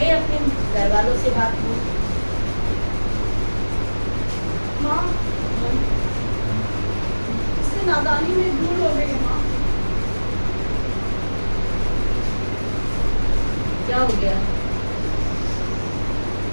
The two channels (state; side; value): inverted; both; correlation -1.00